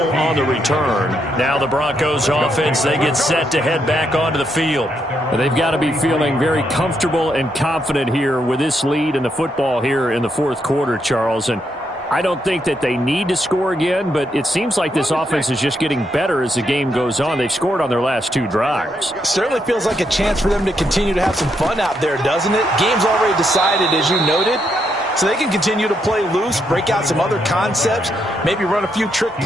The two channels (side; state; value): both; normal; correlation 0.78